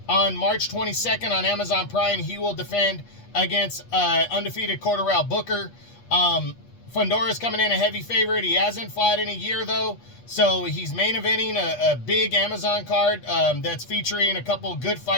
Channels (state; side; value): late; right; 8.3 ms